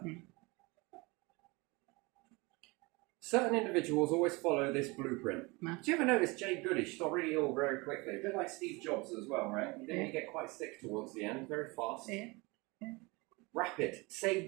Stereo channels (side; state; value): left; quieter; 25.5 dB